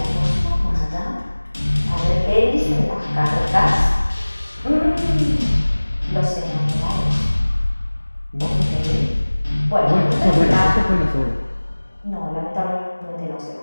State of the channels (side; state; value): both; inverted; correlation -1.00